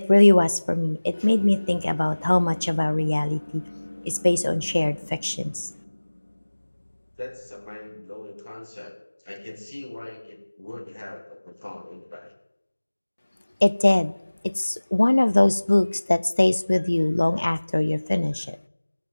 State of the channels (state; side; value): inverted; both; correlation -1.00